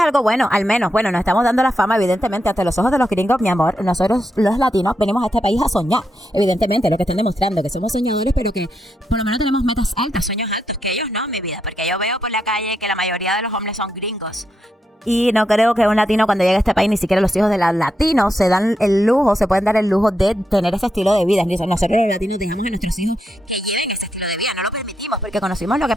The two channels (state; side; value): normal; both; correlation 0.83